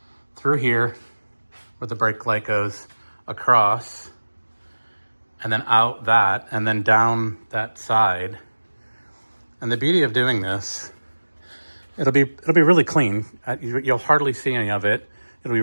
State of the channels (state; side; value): inverted; both; correlation -1.00